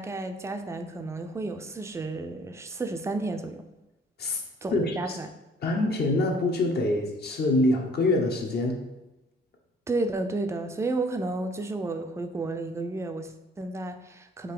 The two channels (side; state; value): both; normal; correlation 0.57